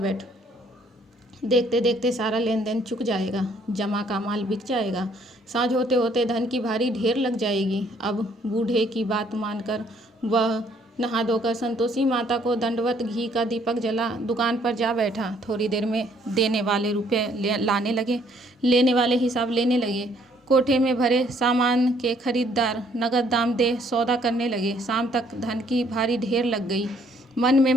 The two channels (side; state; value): both; normal; correlation 0.64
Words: देखते देखते सारा लेन देन चुक जाएगा, जमा का माल बिक जाएगा, साँझ होते होते धन की भारी ढेर लग जाएगी। अब बूढ़े की बात मानकर वह नहा धोकर संतोषी माता को दंडवत घी का दीपक जला दुकान पर जा बैठा। थोड़ी देर में देने वाले रुपये लाने लगे, लेने वाले हिसाब लेने लगे। कोठे में भरे सामान के खरीदार नगद दाम दे सौदा करने लगे। शाम तक धन की भारी ढेर लग गई। मन में